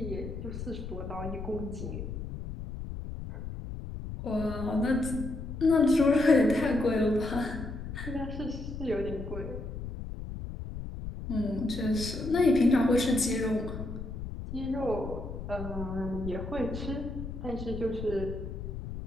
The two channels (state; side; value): noise; left; rumble, 8 dB below the sound